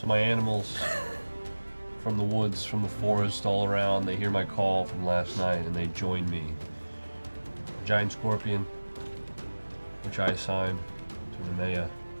my animals from the woods, from the forest, all around, they hear my call from last night and they join me. A giant scorpion, which I assigned to Nemea.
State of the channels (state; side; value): inverted; both; correlation -1.00